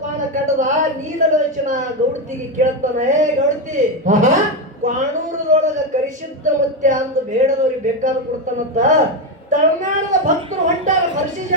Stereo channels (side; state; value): both; normal; correlation 0.10